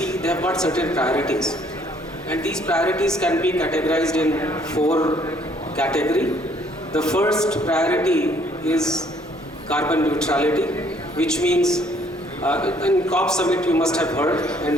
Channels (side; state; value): both; normal; correlation 0.63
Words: they have got certain priorities. And these priorities can be categorized in 4 categories. The first priority is carbon neutrality, which means in COP summit you must have heard, and